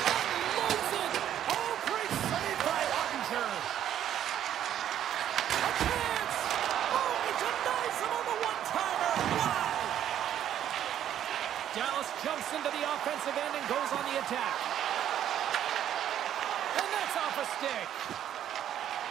it! Oh, great save by Ottinger. A chance! Oh, he denies him on the one-timer! Wow! Dallas jumps into the offensive end and goes on the attack. And that's off a stick.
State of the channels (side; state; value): left; quieter; 10.7 dB